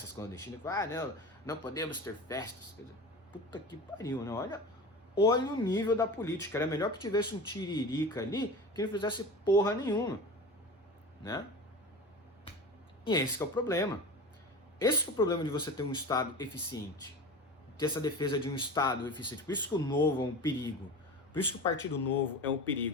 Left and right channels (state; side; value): normal; both; correlation 0.32